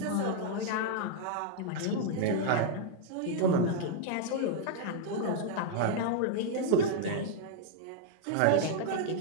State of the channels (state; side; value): different; both; correlation -0.01